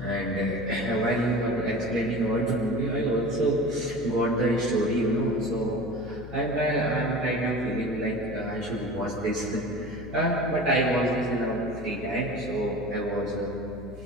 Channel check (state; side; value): noise; left; hum, 14 dB below the sound